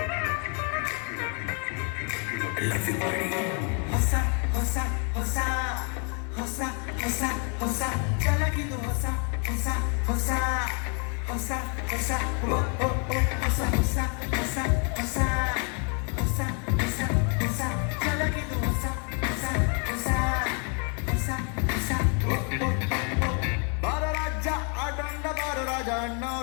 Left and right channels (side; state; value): right; quieter; 38.3 dB